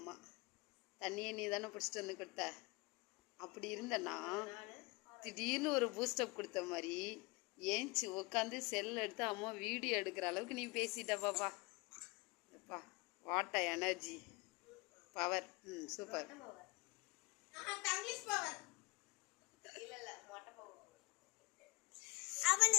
தண்ணியை நீ தானே பிடிச்சிட்டு வந்து கொடுத்த. அப்படி இருந்தனா திடீர்னு ஒரு பூஸ்டப் கொடுத்த மாதிரி ஏஞ்சி உட்காந்து செல் எடுத்து அம்மா வீடியோ எடுக்கிற அளவுக்கு நீ பேசிட்ட பாப்பா. What energy power. Super.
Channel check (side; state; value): right; quieter; 25.6 dB